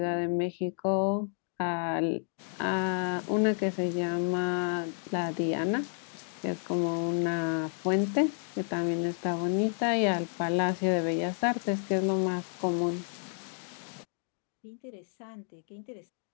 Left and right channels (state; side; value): silent; right; 57 dB below the other